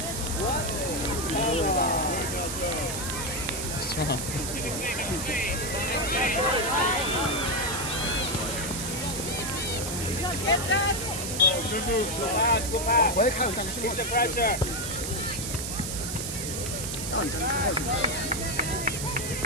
Strong. Good move, Go son. pass, go pass. 我也看有站之后 Keep，the pressure. 让你站之后去。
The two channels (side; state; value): right; noise; hiss, 4 dB below the sound